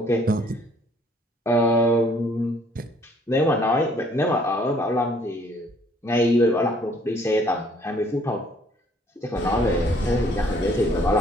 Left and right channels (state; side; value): normal; both; correlation 0.61